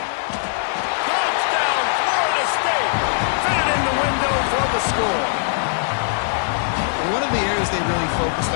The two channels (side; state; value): right; silent; digital silence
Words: Touchdown, Florida State. Fit in the window for the score. One of the areas they really